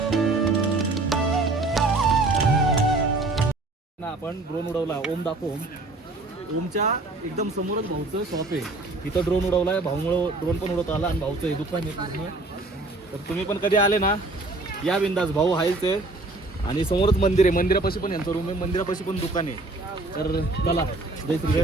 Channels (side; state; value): left; quieter; 3.1 dB